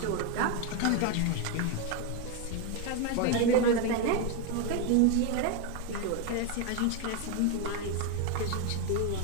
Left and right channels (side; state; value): both; different; correlation 0.02